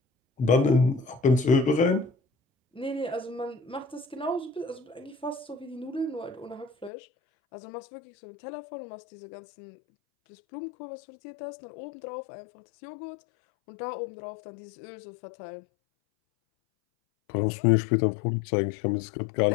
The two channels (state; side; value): drops out; right; at 6.9 s